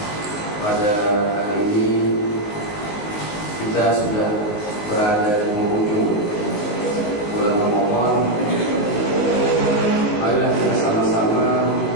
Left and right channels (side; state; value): right; late; 19 ms